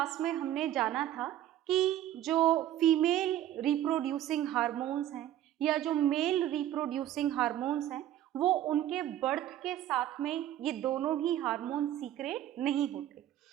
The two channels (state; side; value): quieter; left; 12.4 dB